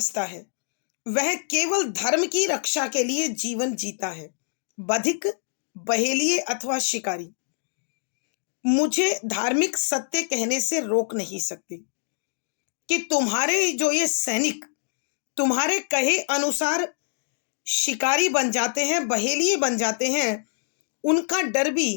है। वह केवल धर्म की रक्षा के लिए जीवन जीता है। बधिक, बहेलिए अथवा शिकारी मुझे धार्मिक सत्य कहने से रोक नहीं सकते। कि तुम्हारे जो ये सैनिक तुम्हारे कहे अनुसार शिकारी बन जाते हैं, बहेलिए बन जाते हैं, उनका डर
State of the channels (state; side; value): silent; right; digital silence